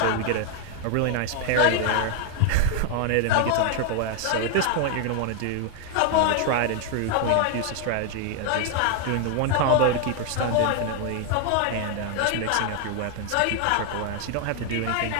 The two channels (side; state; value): both; different; correlation 0.00